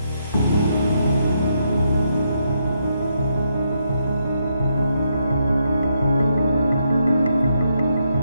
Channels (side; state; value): both; inverted; correlation -0.78